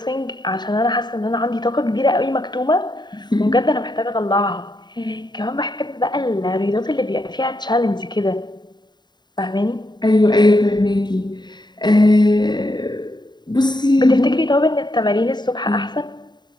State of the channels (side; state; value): right; late; 0.21 ms